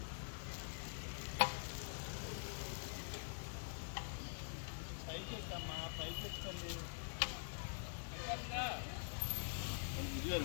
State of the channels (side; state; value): right; silent; digital silence